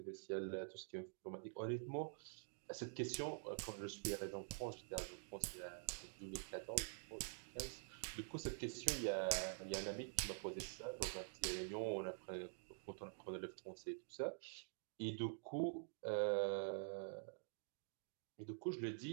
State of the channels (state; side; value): silent; left; digital silence